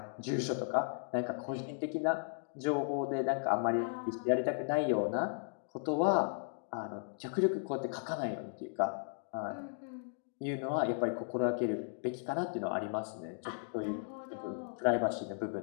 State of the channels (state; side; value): silent; right; digital silence